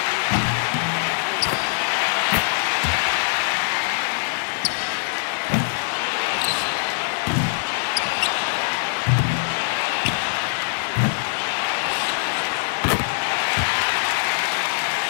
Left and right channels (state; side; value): silent; right; 64 dB below the other